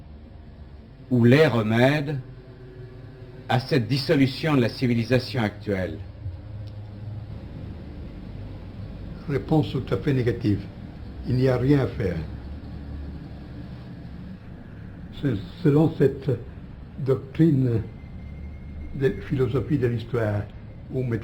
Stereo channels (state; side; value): identical; both; correlation 1.00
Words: ou les remèdes à cette dissolution de la civilisation actuelle? Réponse tout à fait négative. Il n'y a rien à faire. Selon cette doctrine de philosophie de l'histoire ou